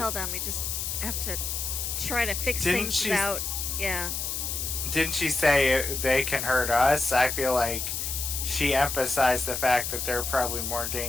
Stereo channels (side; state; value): left; noise; hiss, 3 dB below the sound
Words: them. We just have to try to fix Didn't things she- without... Yeah. Didn't she say they can hurt us? I feel like she emphasized the fact that they're probably more